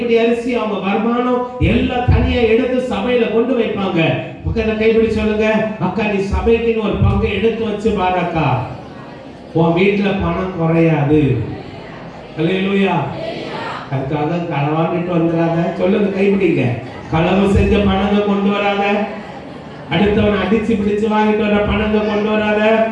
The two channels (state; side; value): identical; both; correlation 1.00